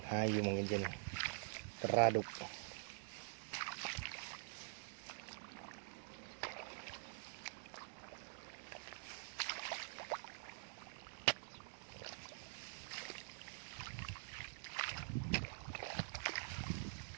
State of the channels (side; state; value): left; silent; digital silence